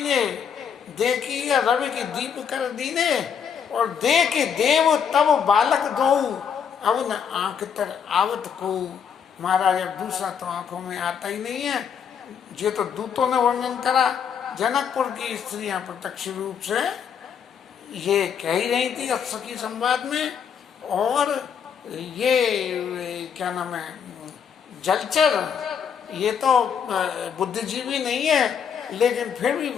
देखिया रवि की दीप कर दीने, और देख देव तब बालक दो, अब न आंख तर आवत को। महाराज अब दूसरा तो आंखों में आता ही नहीं है। ये तो दूतों ने वर्णन करा, जनकपुर की स्त्रियां प्रत्यक्ष रूप से ये कह ही रही थी सखी संवाद में। और ये क्या नाम है, जलचर, ये तो बुद्धिजीवी नहीं है, लेकिन फिर भी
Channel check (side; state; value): right; quieter; 7.4 dB